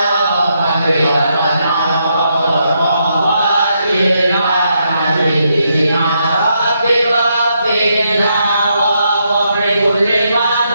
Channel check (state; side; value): inverted; both; correlation -0.79